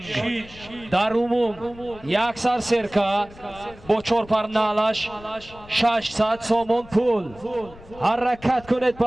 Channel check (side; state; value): left; noise; rumble, 21 dB below the sound